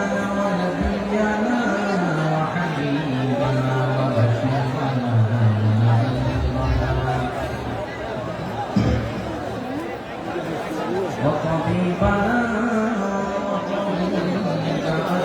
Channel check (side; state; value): both; identical; correlation 1.00